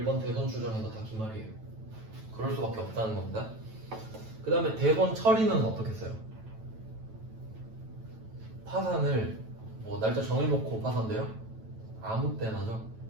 대손 추정에서 다 기말이에요. 그럴 수밖에 없다는 겁니다. 그 다음에 대손 처리는 어떻게 써요? 파산을 뭐 날짜 정해놓고 파산돼요? 아무 때나죠.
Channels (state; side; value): late; left; 9.1 ms